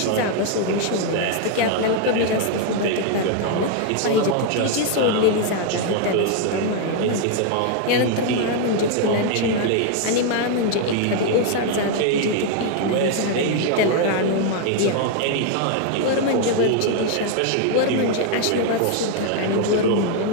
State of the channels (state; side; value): different; both; correlation 0.00